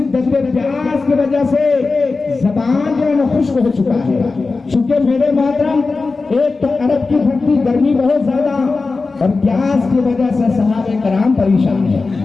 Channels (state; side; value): quieter; right; 4.0 dB